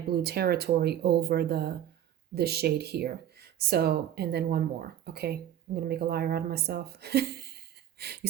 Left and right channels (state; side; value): quieter; left; 11.1 dB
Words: blue territory over the shade here. So, and then one more. Okay, I'm gonna make a liar out of myself. You